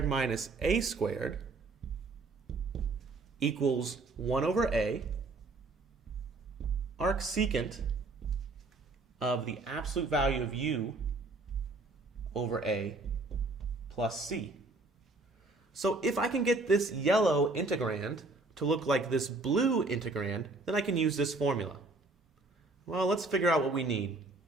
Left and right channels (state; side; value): quieter; left; 3.3 dB